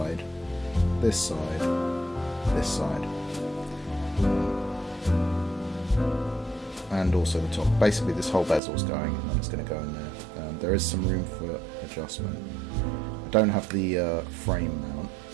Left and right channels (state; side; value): drops out; left; at 8.6 s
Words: this side, this side, and also the top. Basically this whole bezel's going, and then it's going to go in there. There is some room for adjustment. I don't have the frame mount,